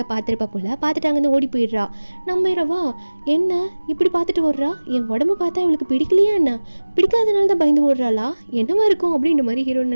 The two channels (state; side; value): inverted; both; correlation -1.00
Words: பார்த்துருப்பா போல பார்த்துட்டு அங்கேருந்து ஓடி போயிடுறா. நம்ம ஹீரோவா என்ன இப்படி பார்த்துட்டு ஓடுறா, என் உடம்பு பார்த்தா இவளுக்கு பிடிக்கலையா என்ன, பிடிக்காதனால தான் பயந்து ஓடுறாளா, என்னவா இருக்கும் அப்படின்ற மாதிரி ஹீரோயின்